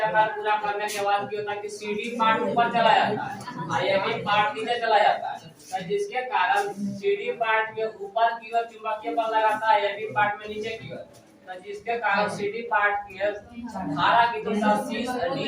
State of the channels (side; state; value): both; identical; correlation 1.00